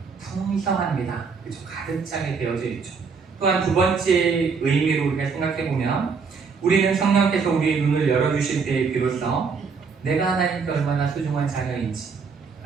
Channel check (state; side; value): quieter; left; 5.3 dB